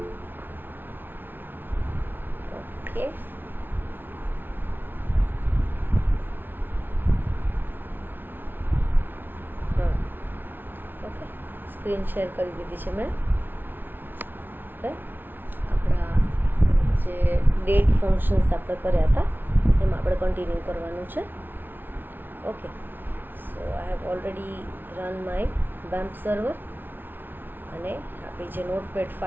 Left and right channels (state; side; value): late; left; 0.096 ms